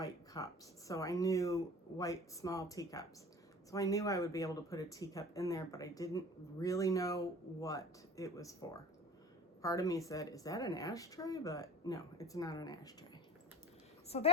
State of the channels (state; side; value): normal; both; correlation 0.37